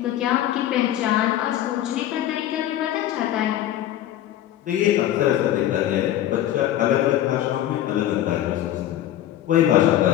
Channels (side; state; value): right; quieter; 12.4 dB